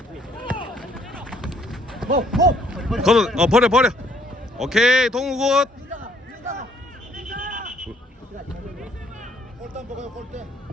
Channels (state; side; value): normal; both; correlation 0.65